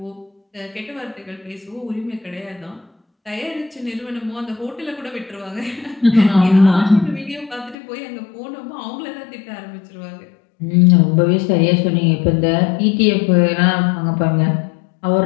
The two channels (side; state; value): right; drops out; at 7.8 s